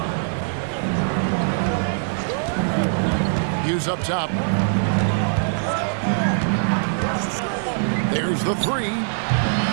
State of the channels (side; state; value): left; silent; 59 dB below the other